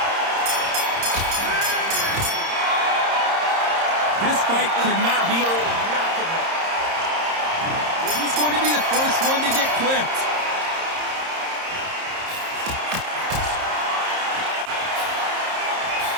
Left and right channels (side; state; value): left; late; 30 ms